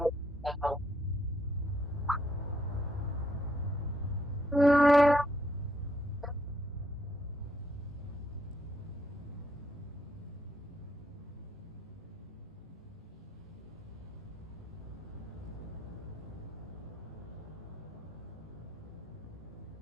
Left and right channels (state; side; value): normal; both; correlation 0.73